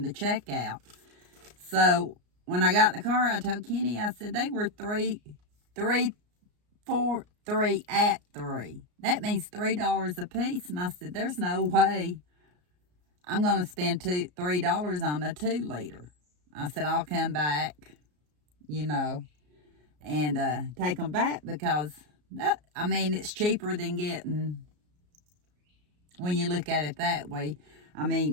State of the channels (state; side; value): late; left; 33 ms